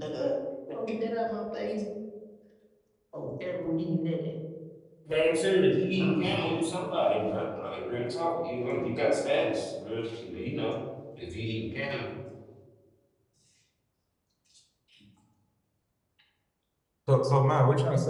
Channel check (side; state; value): both; identical; correlation 1.00